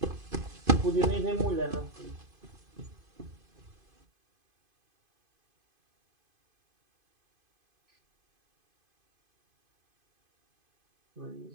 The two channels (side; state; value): left; late; 2.5 ms